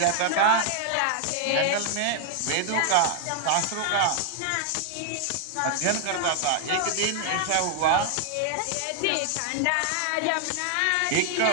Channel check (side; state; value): both; different; correlation 0.00